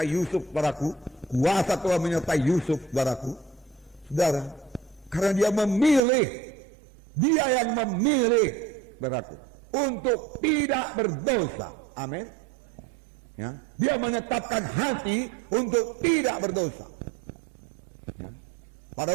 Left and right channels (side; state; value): left; drops out; at 6.0 s